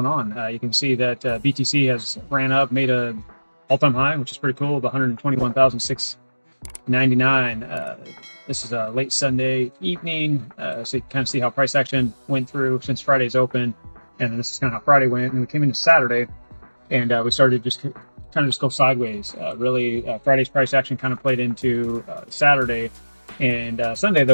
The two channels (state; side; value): inverted; both; correlation -1.00